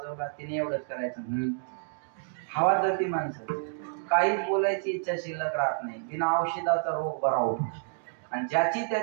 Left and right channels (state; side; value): silent; left; digital silence